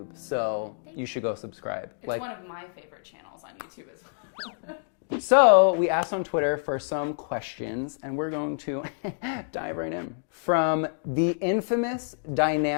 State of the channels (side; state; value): right; silent; digital silence